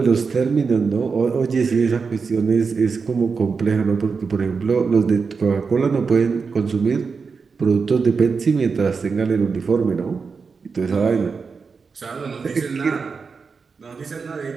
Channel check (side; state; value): left; quieter; 5.1 dB